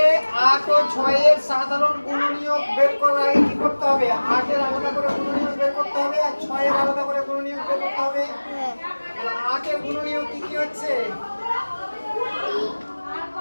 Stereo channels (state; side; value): inverted; both; correlation -1.00